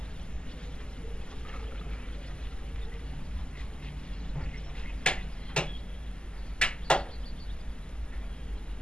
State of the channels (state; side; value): late; right; 0.048 ms